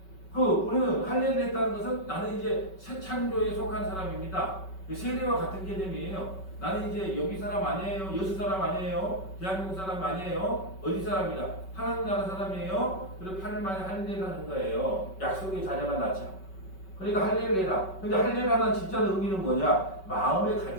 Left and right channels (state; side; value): late; right; 5.3 ms